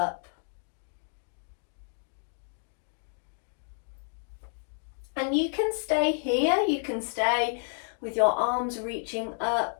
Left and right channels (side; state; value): right; silent; digital silence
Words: And you can stay here, you can stay with your arms reaching